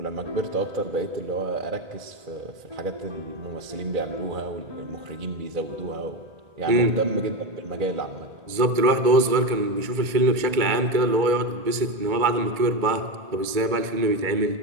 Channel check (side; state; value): left; late; 2.2 ms